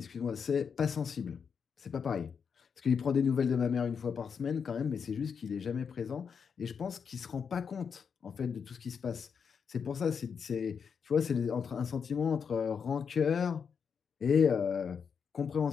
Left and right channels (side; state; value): right; quieter; 6.5 dB